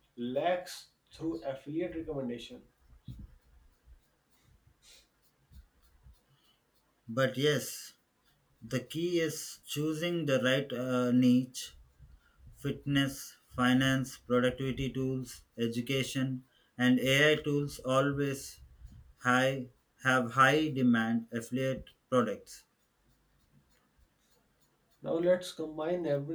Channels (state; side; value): identical; both; correlation 1.00